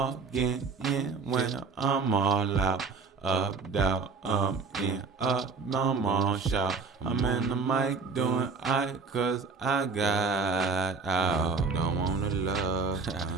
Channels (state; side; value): quieter; left; 4.7 dB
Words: in when I'm all out. Up, down, in, up, I'm on shout. I'm in the mic doing cause I got out. Don't wanna love,